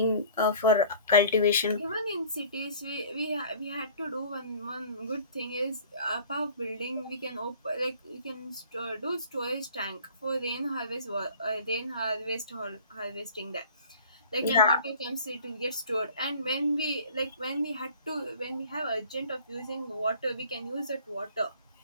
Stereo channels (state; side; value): inverted; both; correlation -0.48